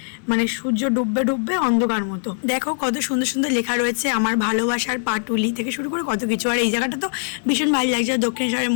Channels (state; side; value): silent; right; digital silence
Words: মানে সূর্য ডুববে ডুববে অন্ধকার মতো। দেখো কত সুন্দর সুন্দর লেখা রয়েছে আমার ভালোবাসার পাটুলি থেকে শুরু করে কত কিছু। আর এই জায়গাটা তো ভীষণ ভালো লাগছে, দক্ষিণেশ্বরের